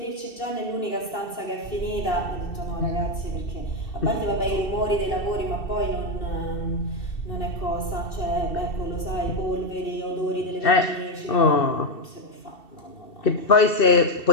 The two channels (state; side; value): late; right; 2.7 ms